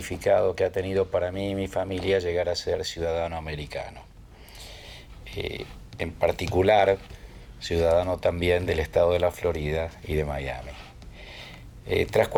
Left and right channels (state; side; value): identical; both; correlation 1.00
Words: que ha tenido para mí y mi familia llegar a ser ciudadano americano. En particular, ciudadano también del estado de la Florida y de Miami. Tras